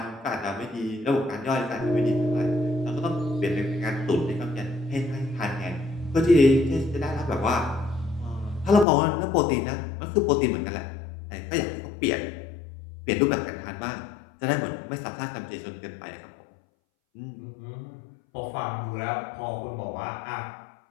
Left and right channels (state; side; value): drops out; right; at 8.8 s